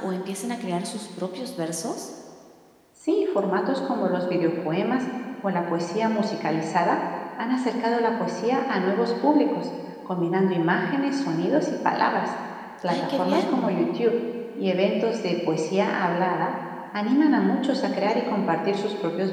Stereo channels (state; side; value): identical; both; correlation 1.00